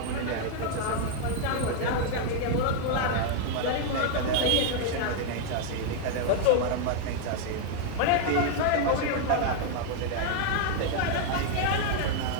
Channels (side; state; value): both; different; correlation 0.00